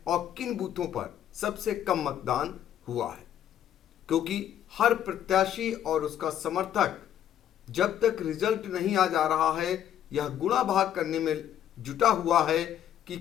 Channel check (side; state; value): right; quieter; 10.5 dB